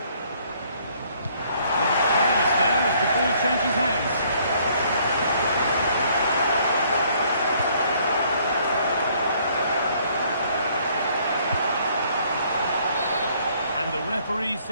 Careless there as the ball changes hands. And the referee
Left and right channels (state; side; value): inverted; both; correlation -0.63